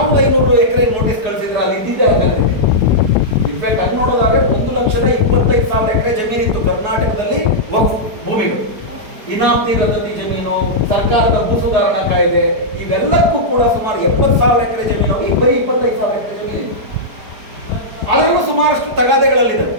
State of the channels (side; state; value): left; late; 4.7 ms